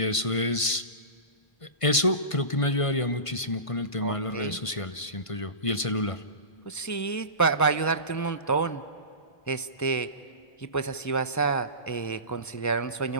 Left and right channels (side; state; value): right; late; 1.5 ms